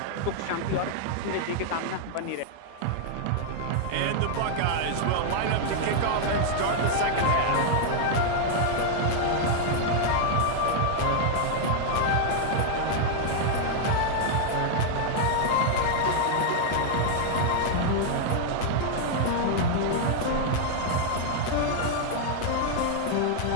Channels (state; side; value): different; both; correlation 0.00